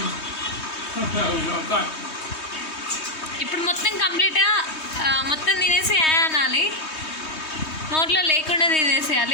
ఇప్పుడు మొత్తం కంప్లీట్గా మొత్తం తినేసి అనాలి. నోట్లో లేకుండా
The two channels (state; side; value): late; right; 3.2 ms